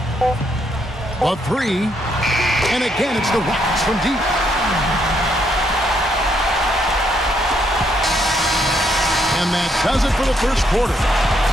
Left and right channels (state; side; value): normal; both; correlation 0.74